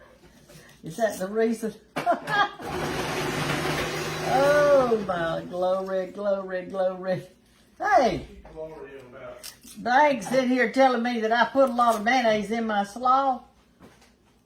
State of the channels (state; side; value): identical; both; correlation 1.00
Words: Is that the reason? Oh my glory, glory, glory. Hey, Bag's sitting here telling me that I put a lot of mayonnaise in my slaw.